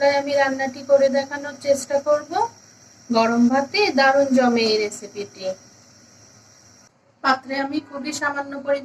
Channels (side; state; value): both; identical; correlation 1.00